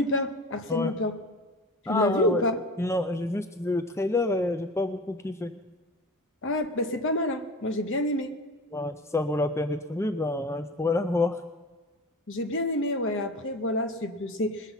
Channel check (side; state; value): both; normal; correlation 0.33